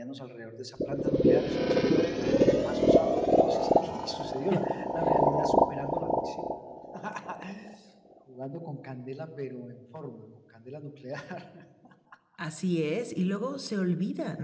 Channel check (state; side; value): identical; both; correlation 1.00